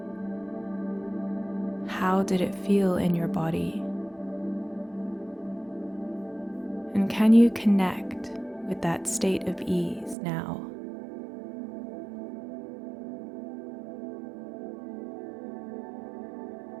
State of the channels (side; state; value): left; drops out; at 10.2 s